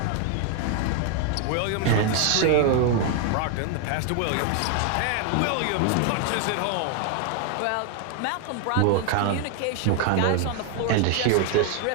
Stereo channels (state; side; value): different; both; correlation 0.00